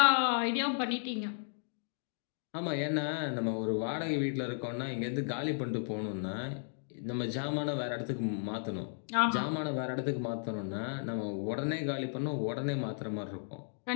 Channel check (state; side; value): silent; right; digital silence